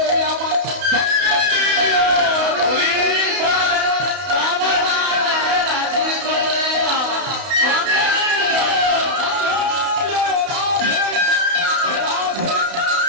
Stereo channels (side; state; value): left; late; 32 ms